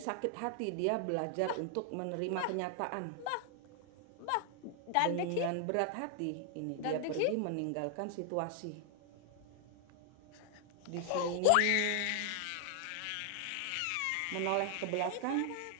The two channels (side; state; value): both; different; correlation 0.00